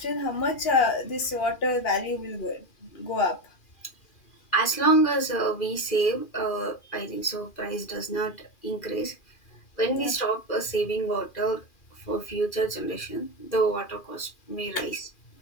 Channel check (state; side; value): late; right; 2.4 ms